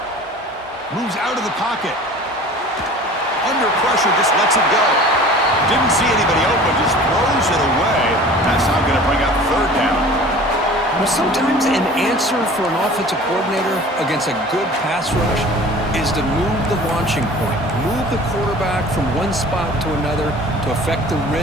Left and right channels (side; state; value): both; normal; correlation 0.44